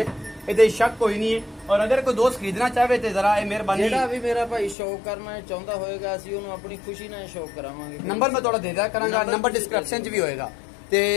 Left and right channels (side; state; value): right; drops out; at 4.8 s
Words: ये शक कोई नहीं है। और अगर कोई दोस्त खरीदना चाहे तो जरा मेहरबानी जेड़ा भी मेरा भाई शौक करना चाहता होएगा असीं उहनूं अपनी खुशी नाल शौक करावांगे। नंबर मैं थोड़ा दे दिया करांगा, नंबर डिस्क्रिप्शन च भी होएगा। ते